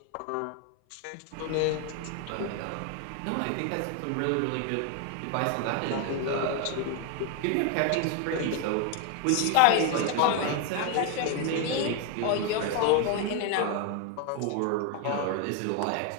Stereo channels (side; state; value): both; different; correlation 0.01